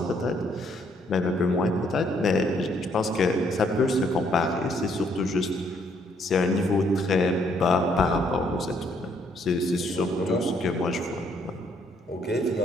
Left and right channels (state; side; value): normal; both; correlation 0.69